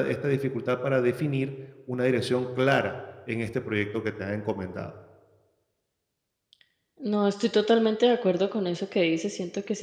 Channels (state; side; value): identical; both; correlation 1.00